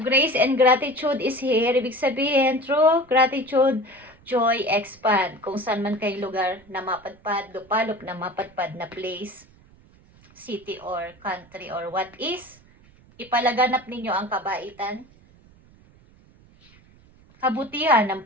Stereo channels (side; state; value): right; noise; rumble, 27 dB below the sound